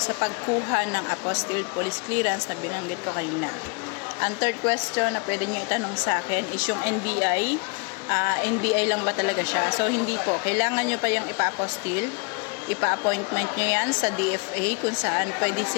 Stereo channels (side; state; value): right; quieter; 32.8 dB